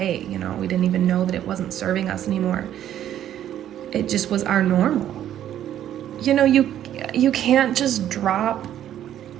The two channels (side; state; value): left; quieter; 11.1 dB